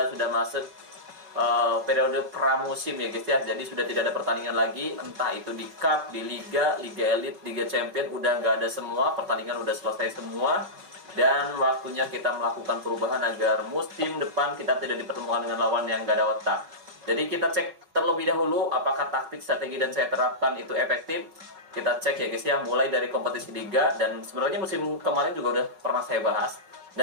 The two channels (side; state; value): left; late; 5.4 ms